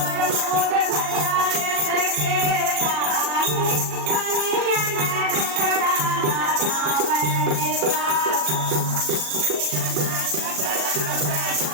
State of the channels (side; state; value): left; late; 40 ms